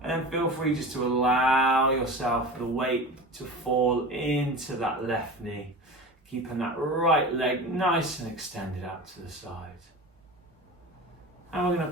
And then feel free just to allow yourself the weight to fall into that left knee, keeping that right leg nice and extended out to the side. And we're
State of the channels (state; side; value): normal; both; correlation 0.32